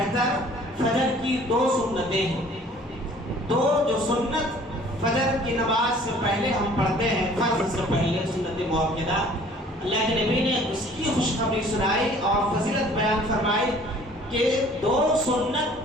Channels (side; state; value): both; normal; correlation 0.53